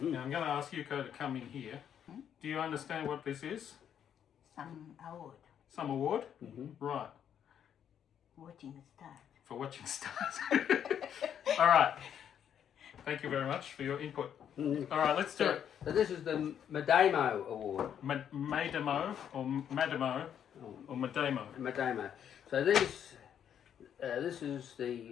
I'm going to ask Yuko to come in here. Do you understand what this is? Some award. Some award? Right. Watching stars. For watching stars. All right. Thank you very much for your input. All right, let's do it. So this is the Madamo Award. Madamo or Madamo or Madamo. Madamo. So this is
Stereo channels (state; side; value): quieter; right; 9.0 dB